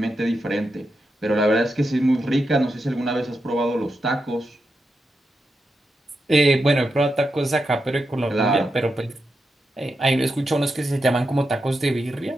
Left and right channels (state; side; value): normal; both; correlation 0.87